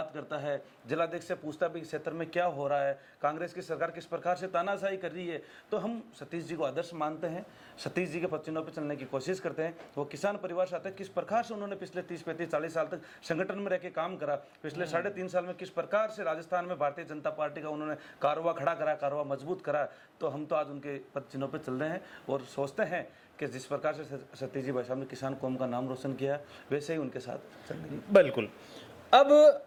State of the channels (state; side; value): identical; both; correlation 1.00